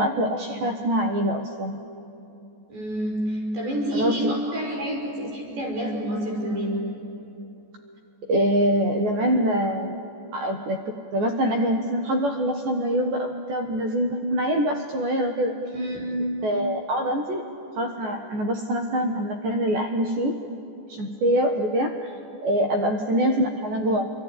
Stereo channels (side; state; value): left; late; 14 ms